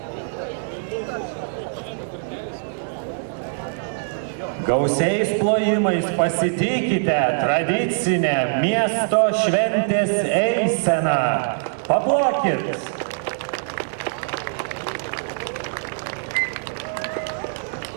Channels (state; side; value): silent; left; digital silence